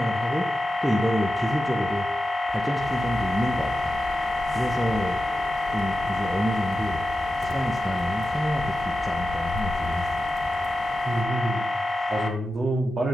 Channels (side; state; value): both; normal; correlation 0.91